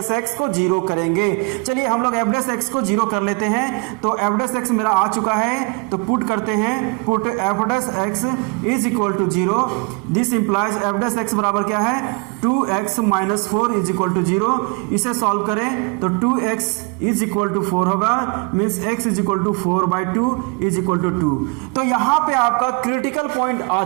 एक्स को जीरो करेंगे। चलिए हम लोग एफ डैश एक्स को जीरो कर लेते हैं। तो एफ डैश एक्स मेरा आ चुका है तो पुट करते हैं, put F dash x is equal to zero. This implies F dash X बराबर क्या है 2x minus 4 is equal to zero. इसे सॉल्व करें तो 2x इज इक्वल टू 4 होगा, means x is equal to 4/2 is equal to 2। तो यहां पे आपका क्रिटिकल पॉइंट आ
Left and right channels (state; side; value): quieter; left; 31.7 dB